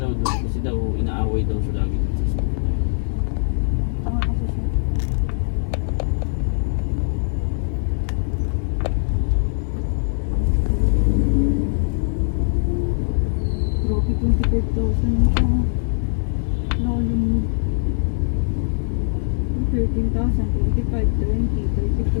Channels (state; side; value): silent; right; digital silence